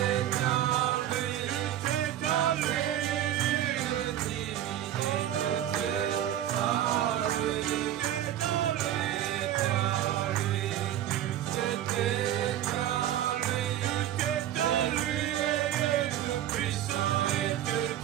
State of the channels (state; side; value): quieter; left; 11.9 dB